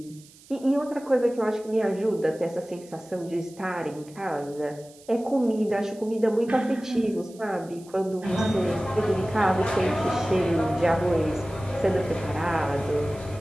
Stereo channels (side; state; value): right; noise; hiss, 24 dB below the sound